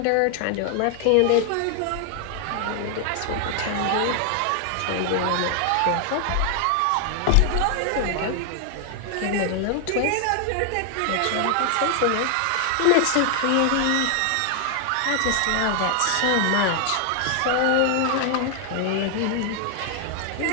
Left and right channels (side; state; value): both; different; correlation 0.00